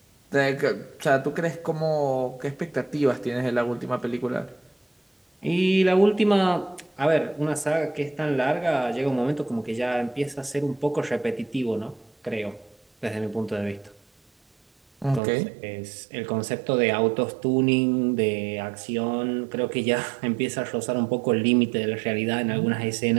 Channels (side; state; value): left; drops out; at 15.2 s